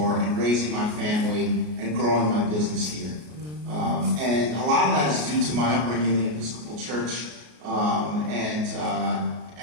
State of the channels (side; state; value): left; late; 33 ms